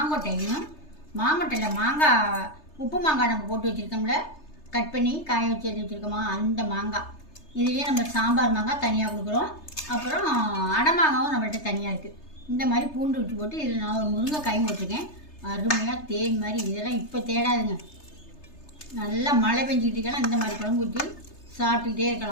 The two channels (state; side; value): late; right; 3.3 ms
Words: மாங்கொட்டையில் மாங்காய் உப்பு மாங்காய் நம்ம போட்டு வச்சுருக்கோம்ல, கட் பண்ணி காய வச்சு எடுத்து வச்சுருக்கோமா, அந்த மாங்காய். இதுலேயே நம்ம சாம்பார் மாங்காய் தனியாக கொடுக்குறோம். அப்புறம் அடமாங்காவும் நம்மள்கிட்ட தனியாக இருக்குது. இந்த மாதிரி பூண்டு விட்டு போட்டு இதில் நான் ஒரு முருங்கைக்காயும் போட்டிருக்கேன். அருமையாக தேன் மாதிரி. இதெல்லாம் இப்போ தேடாதுங்க. நல்லா மழை பெஞ்சிக்கிட்டு இருக்கலாம். இந்த மாதிரி குழம்பு ஊற்றி சாப்பிட்டுக்கிட்டே